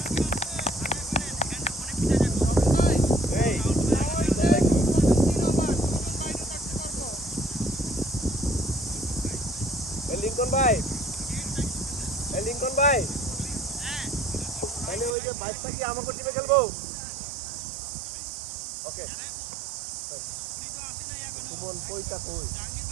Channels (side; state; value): left; drops out; at 15.2 s